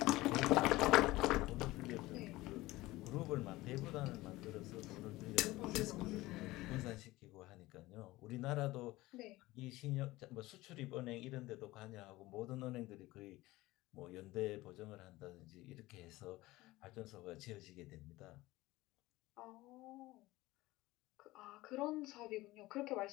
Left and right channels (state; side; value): quieter; right; 18.8 dB